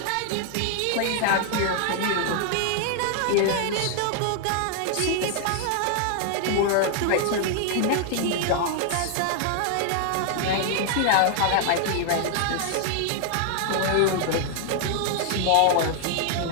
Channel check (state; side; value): different; both; correlation 0.00